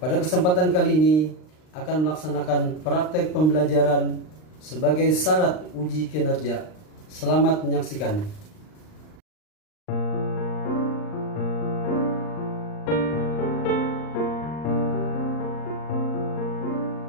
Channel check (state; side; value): late; right; 39 ms